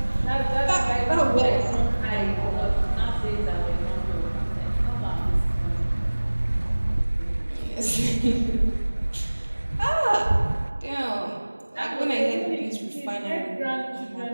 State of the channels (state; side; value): inverted; both; correlation -1.00